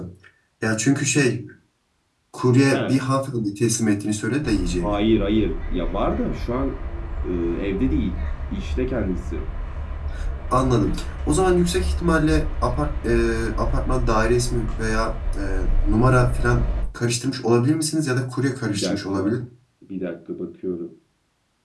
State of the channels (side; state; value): both; identical; correlation 1.00